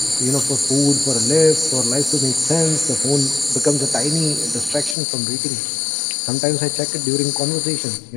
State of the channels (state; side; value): drops out; right; at 5.0 s